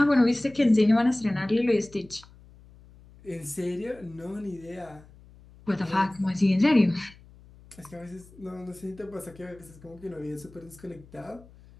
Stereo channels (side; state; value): left; noise; hum, 23 dB below the sound